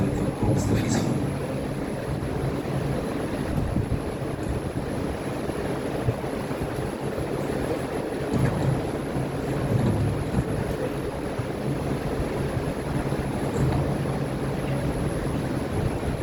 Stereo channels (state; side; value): identical; both; correlation 1.00